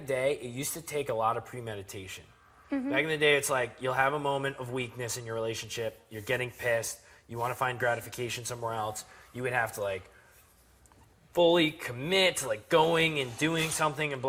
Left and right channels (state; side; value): identical; both; correlation 1.00